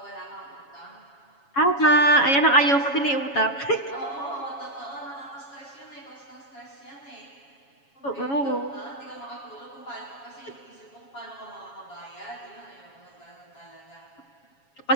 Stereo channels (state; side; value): late; right; 7.2 ms